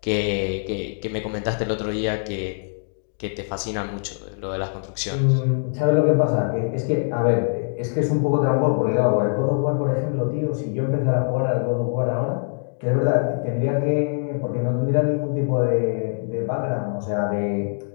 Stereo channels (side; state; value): right; silent; digital silence